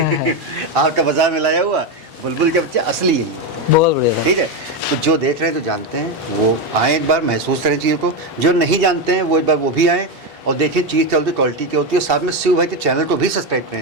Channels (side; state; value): both; normal; correlation 0.11